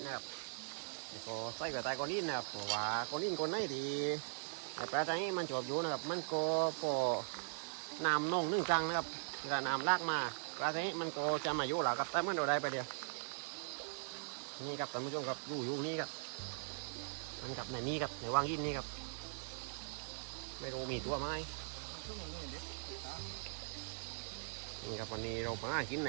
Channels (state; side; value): silent; left; digital silence